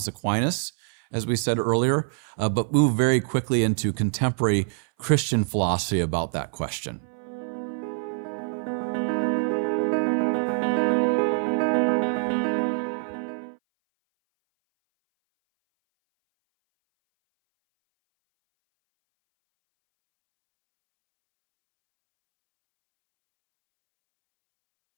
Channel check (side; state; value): left; silent; 59 dB below the other